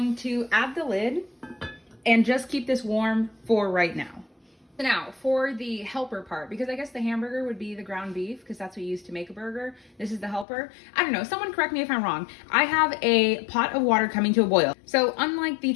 to add the lid and just keep this warm for right now. So now for the helper part, because I guess the hamburger would be the ground beef because that's what you use to make a burger. This is the helper. I don't know, someone correct me if I'm wrong. I have a pot of water coming to a boil. So unlike the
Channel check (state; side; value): drops out; right; at 10.5 s